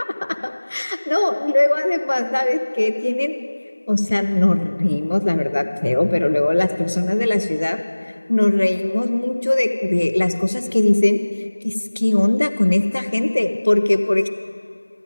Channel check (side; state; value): both; inverted; correlation -1.00